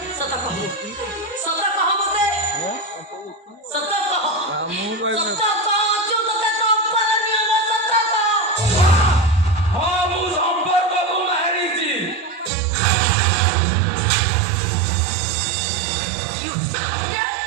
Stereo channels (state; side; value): drops out; left; at 12.5 s